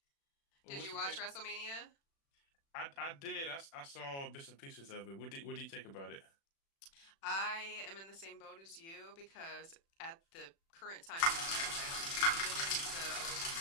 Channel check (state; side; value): late; right; 36 ms